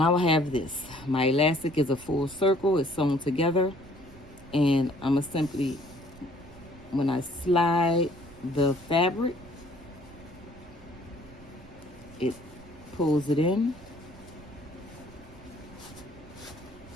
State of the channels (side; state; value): right; noise; rumble, 21 dB below the sound